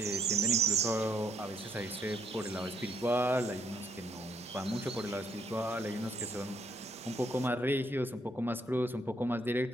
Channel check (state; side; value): normal; both; correlation 0.72